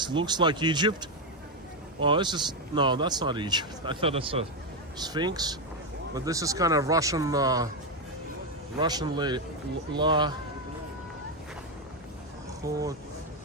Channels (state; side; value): normal; both; correlation 0.06